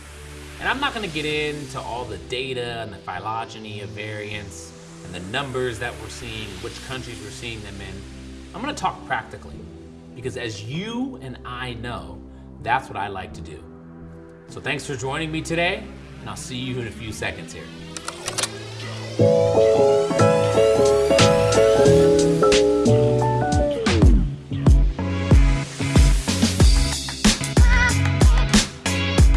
And I'm not going to get into all the data and the phylogeny of variants and the numbers that we're seeing, which countries we're seeing them in. I'm going to talk practically because as you and I know, that's what I like to do. So thanks for joining me today, and I'll see you in a few seconds here.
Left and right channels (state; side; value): identical; both; correlation 1.00